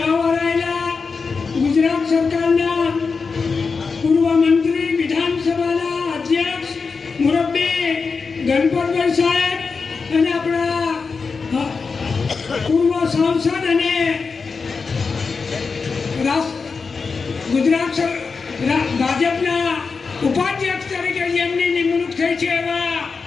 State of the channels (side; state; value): right; quieter; 4.9 dB